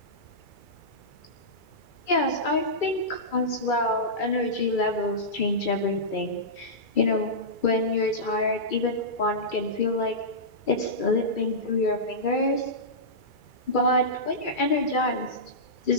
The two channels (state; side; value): late; right; 2.3 ms